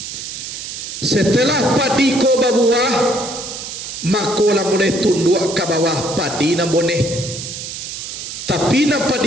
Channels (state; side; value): noise; right; hiss, 8 dB below the sound